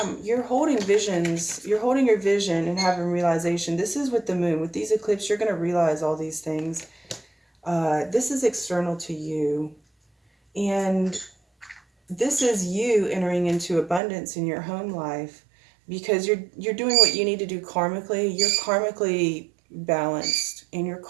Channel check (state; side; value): drops out; left; at 14.0 s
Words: you're holding visions. You're holding your vision and having realization. This is with the moon. With these eclipses, you're going to realize all these things. This is external to you. And this is you entering into abundance in your home life, because you're doing what you need to do karmically. You're karmically balanced, and you're